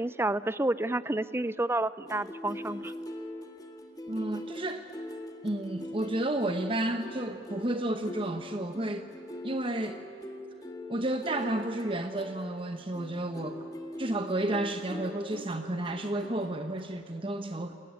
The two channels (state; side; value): normal; both; correlation 0.67